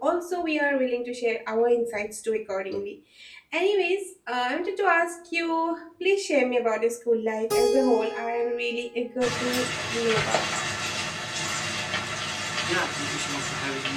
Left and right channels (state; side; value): identical; both; correlation 1.00